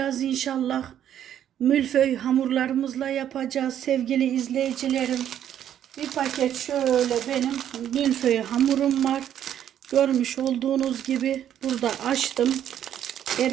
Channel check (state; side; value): quieter; left; 10.3 dB